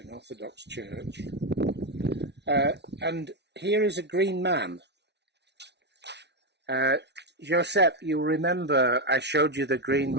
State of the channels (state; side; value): late; left; 0.50 ms